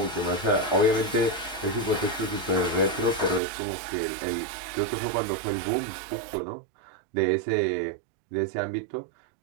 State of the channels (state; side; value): drops out; left; at 3.4 s